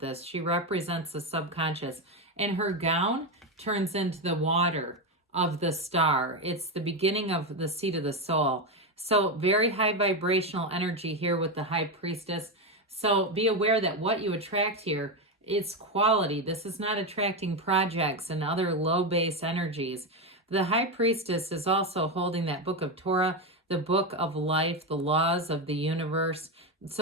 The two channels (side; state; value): both; normal; correlation 0.11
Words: this. She represents the subconscious. And her gown turns into the water of the star. It's the beginning of the seat of the soul. So very high vibrational energy here with the High Priestess. So be aware that what you attract here, it's quality. This is not attracting projects and other low base energies. The High Priestess is also holding that book of Torah, the book of life, the laws of the universe.